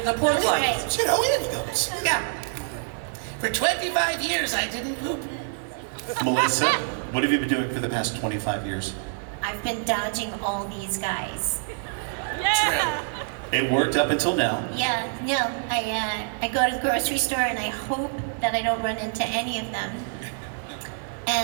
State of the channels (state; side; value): silent; left; 61 dB below the other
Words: The pork lines. You know, Andy goes. Yeah. For 25 years, I didn't poop. Melissa, what have you been doing for the past 25 years? I've been dodging all these guys. Yeah. It worked up until now. Yeah, no, I go to the grocery store and I hope that I don't run into any of them.